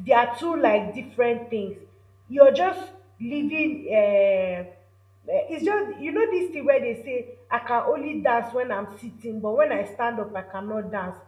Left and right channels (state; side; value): identical; both; correlation 1.00